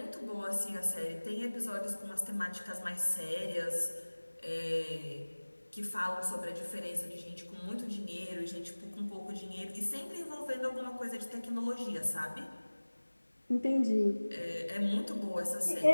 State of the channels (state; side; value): inverted; both; correlation -1.00